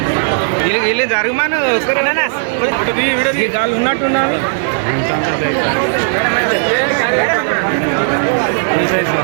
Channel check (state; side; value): silent; left; digital silence